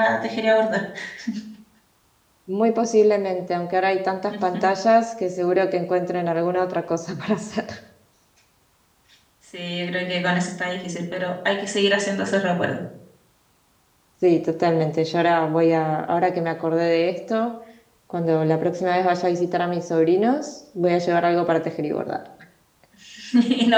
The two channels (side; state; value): both; identical; correlation 1.00